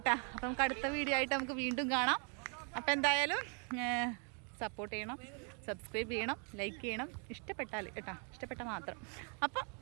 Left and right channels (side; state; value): left; quieter; 38.9 dB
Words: അപ്പം നമുക്ക് അടുത്ത വീഡിയോ ആയിട്ട് നമുക്ക് വീണ്ടും കാണാം. അപ്പം എന്തായാലും സപ്പോർട്ട് ചെയ്യണം, സബ്സ്ക്രൈബ് ചെയ്യണം, ലൈക്ക് ചെയ്യണം. ഇഷ്ടപ്പെട്ടാൽ കേട്ടാ, ഇഷ്ടപ്പെട്ടാൽ മാത്രം. അപ്പം